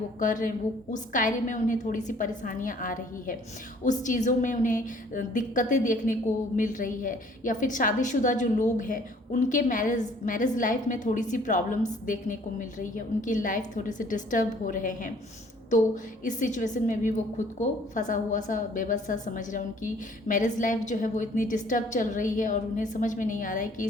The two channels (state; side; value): normal; both; correlation 0.57